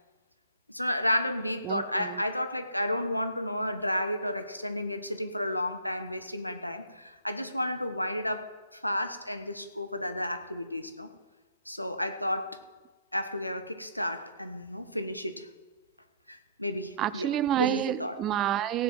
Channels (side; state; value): both; inverted; correlation -0.54